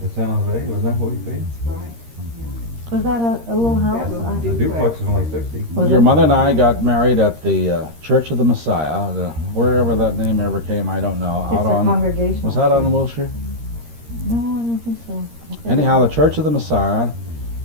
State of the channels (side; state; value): left; late; 13 ms